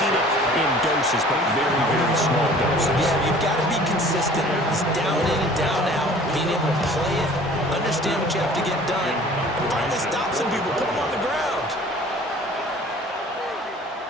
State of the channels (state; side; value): normal; both; correlation 0.49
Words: it in doses, but very, very small doses. Yeah, you've got to be consistent. It's down in and down out. Being able to play it, understand what you have to get done, and finally stop some people, put them on the ground.